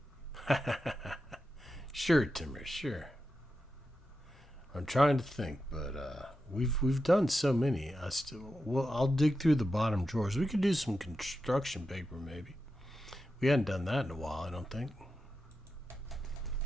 Sure, Timmer, sure. I'm trying to think, but we've done so many. I'll dig through the bottom drawers. We could do some construction paper, maybe. We hadn't done that in a while, I don't think.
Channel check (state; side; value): normal; both; correlation 0.89